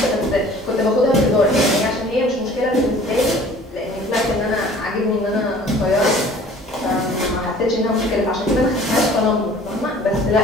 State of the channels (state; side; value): normal; both; correlation 0.49